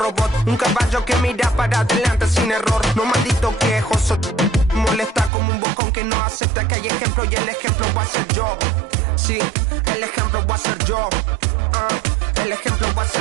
Un caballo que mira para adelante sin error. No maldito quejoso, molesta como un bocón que no acepta que hay ejemplo. Y el ejemplo va a ser yo. Sí, el ejemplo va a ser yo. El ejemplo va a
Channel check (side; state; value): left; drops out; at 5.3 s